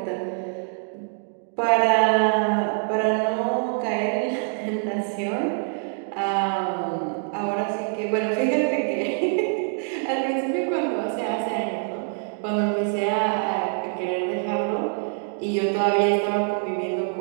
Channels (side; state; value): left; silent; 61 dB below the other